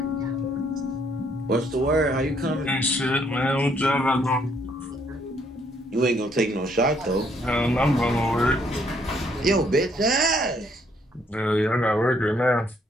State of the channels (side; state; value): both; normal; correlation 0.68